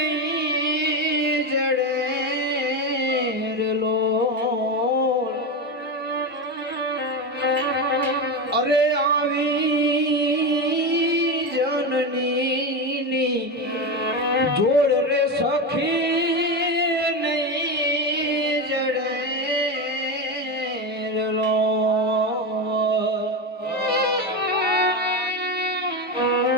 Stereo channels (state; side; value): normal; both; correlation 0.16